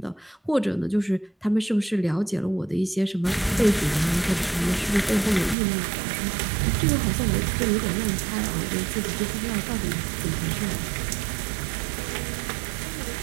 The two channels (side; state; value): left; drops out; at 5.6 s